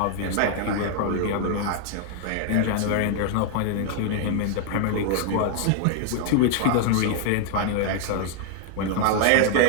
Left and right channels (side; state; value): both; different; correlation 0.00